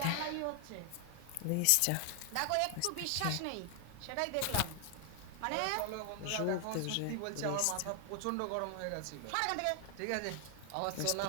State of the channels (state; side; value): different; both; correlation 0.00